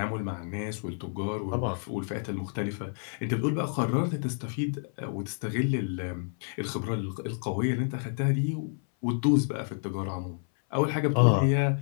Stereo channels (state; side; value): silent; right; 57 dB below the other